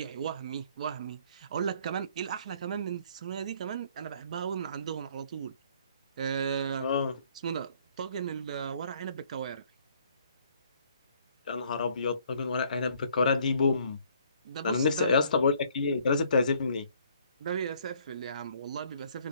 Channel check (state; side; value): inverted; both; correlation -0.62